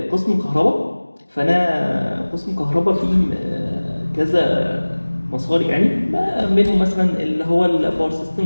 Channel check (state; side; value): inverted; both; correlation -1.00